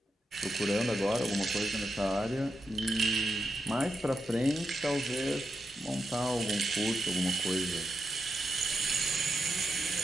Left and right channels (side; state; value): both; normal; correlation 0.86